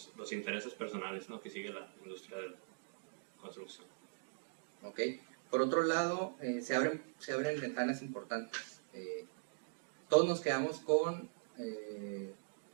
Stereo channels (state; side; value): silent; left; digital silence